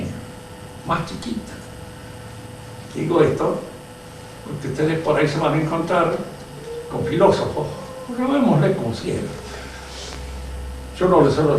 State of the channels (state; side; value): identical; both; correlation 1.00